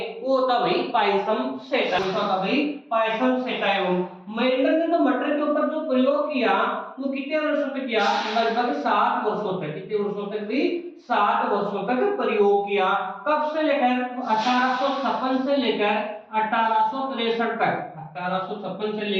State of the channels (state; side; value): identical; both; correlation 1.00